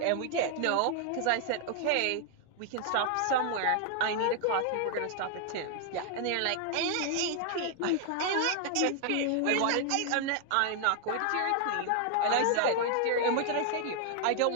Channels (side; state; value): both; different; correlation 0.00